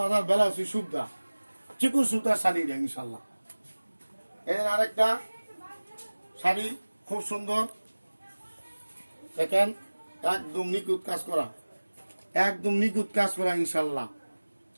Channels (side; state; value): both; inverted; correlation -1.00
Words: ব্লাউজ সুবিধা, চিকুন সুতার শাড়ি দেয় ইনশাল্লাহ। এর আরেকটা শাড়ি খুব সুন্দর, দেখেন একদম নিখুঁত কাজ করা, একদম নিখুঁত কাজ করা ইনশাল্লাহ।